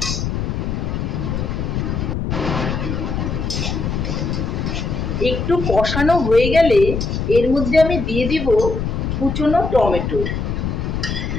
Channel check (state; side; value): noise; left; rumble, 2 dB below the sound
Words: একটু কষানো হয়ে গেলে এর মধ্যে আমি দিয়ে দিব কুচনো টমেটো।